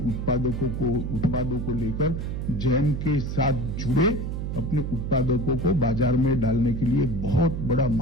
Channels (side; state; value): right; noise; hum, 3 dB below the sound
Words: को लेकर जेम के साथ जुड़े, अपने उत्पादकों को बाजार में डालने के लिए बहुत बड़ा